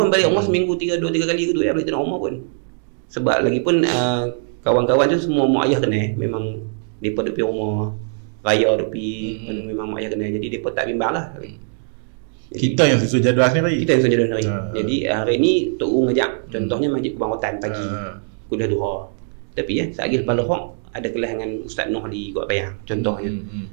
balik rumah seminggu 2-3 kali gitu ya, balik rumah pun. Sebab lagi pun kawan-kawan tu semua mak ayah kena, memang depa duduk rumah raya depi, memang mak ayah kena, jadi depa tak bimbang lah. Kita yang susun jadual sendiri. Jadi hari ni Tok U ngajak, contohnya Masjid Kubang Rotan pagi kuliah duha. Tapi sekali lepas lohok ada kelas dengan Ustaz Noh di Kuat Payang contohnya.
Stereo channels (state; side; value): silent; left; digital silence